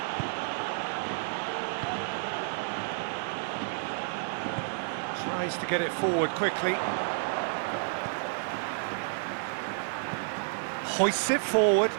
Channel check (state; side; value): silent; left; 57 dB below the other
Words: Tries to get it forward quickly. Hoists it forward.